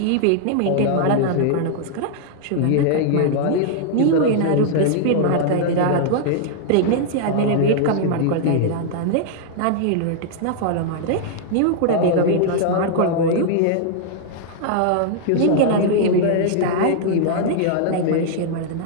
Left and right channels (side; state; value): both; different; correlation -0.01